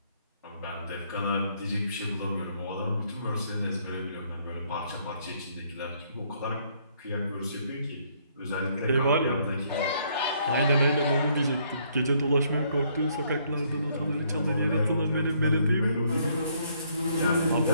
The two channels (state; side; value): inverted; both; correlation -0.68